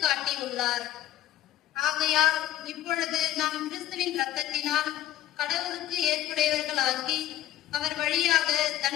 ஆகையால் இப்பொழுது நாம் கிறிஸ்துவின் இரத்தத்தினால் கடவுளுக்கு ஏற்புடையவர்களாக்கி அவர் வழியாக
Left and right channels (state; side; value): quieter; right; 13.1 dB